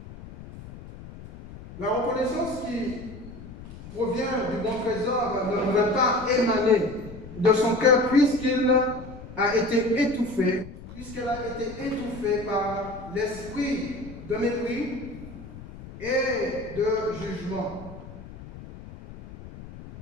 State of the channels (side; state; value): left; noise; rumble, 15 dB below the sound